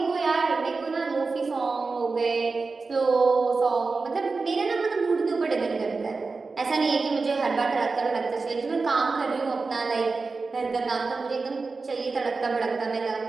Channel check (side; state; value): left; quieter; 4.1 dB